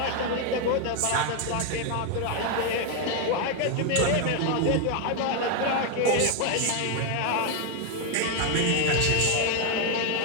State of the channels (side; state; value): both; different; correlation 0.01